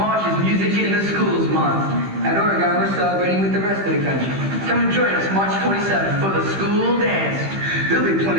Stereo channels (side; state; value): left; late; 15 ms